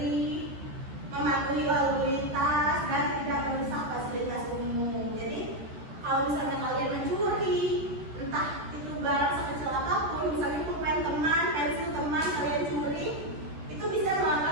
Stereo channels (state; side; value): late; left; 13 ms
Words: mematuhi lalu lintas, dan tidak merusak fasilitas umum. Jadi kalau misalnya kalian mencuri, entah itu barang sekecil apapun, misalnya pulpen teman, pensil teman, kalian curi, itu bisa